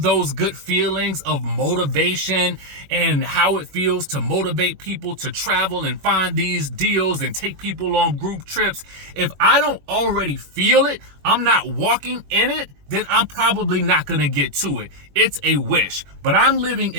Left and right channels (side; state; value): left; late; 21 ms